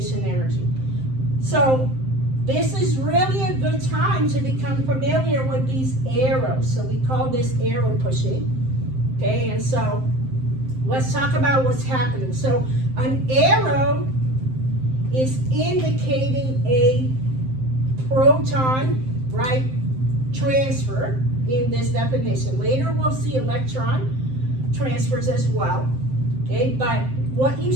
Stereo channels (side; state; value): left; late; 7.7 ms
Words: energy. So this is really a good time to become familiar with these arrows. So we call this arrow pushing. Okay, and so let's talk about what's happening. So an arrow is indicating a proton, right, transfer in this definition. Later we'll see electron transfers as well. Okay, but what you